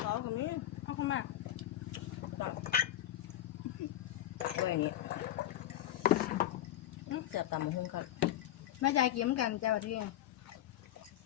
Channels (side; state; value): right; quieter; 12.7 dB